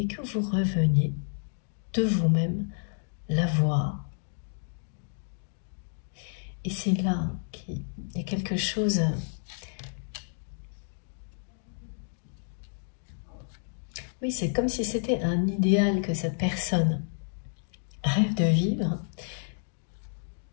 que vous reveniez de vous-même la voir. Et c'est là qu'il y a quelque chose. Oui, c'est comme si c'était un idéal que cette personne rêve de vivre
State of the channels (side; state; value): right; silent; digital silence